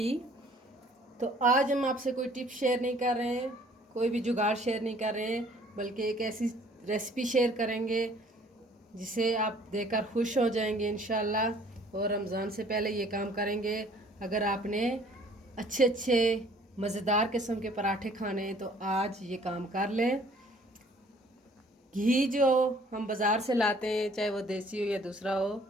तो आज हम आपसे कोई टिप शेयर नहीं कर रहे हैं, कोई भी जुगाड़ शेयर नहीं कर रहे हैं, बल्कि एक ऐसी रेसिपी शेयर करेंगे जिसे आप देखकर खुश हो जाएंगे इंशाल्लाह। और रमज़ान से पहले ये काम करेंगे। अगर आपने अच्छे अच्छे मज़ेदार किस्म के पराठे खाने हैं तो आज ये काम कर लें। घी जो हम बाज़ार से लाते हैं, चाहे वो देसी हो या दूसरा हो,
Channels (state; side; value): normal; both; correlation 0.56